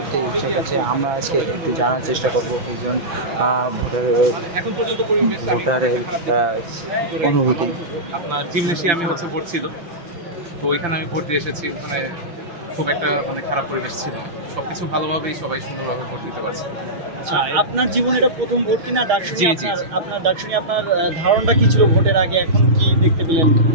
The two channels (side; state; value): left; late; 6.3 ms